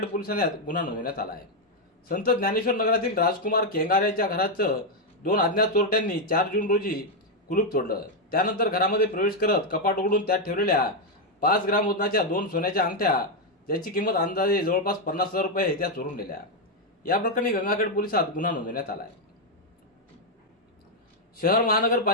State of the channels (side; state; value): both; normal; correlation 0.02